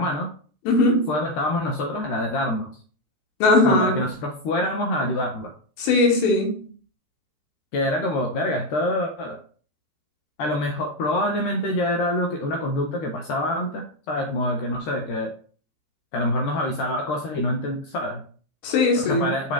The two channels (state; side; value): late; right; 13 ms